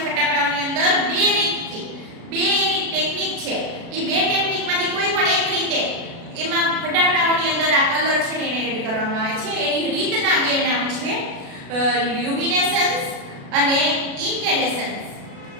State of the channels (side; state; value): left; late; 36 ms